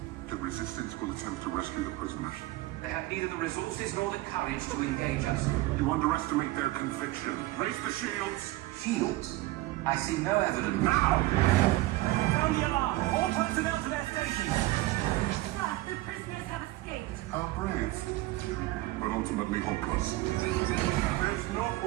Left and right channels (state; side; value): quieter; left; 18.4 dB